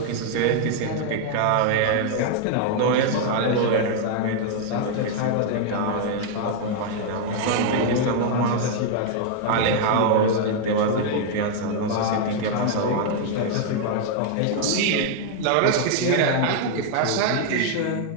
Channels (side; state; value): both; different; correlation 0.00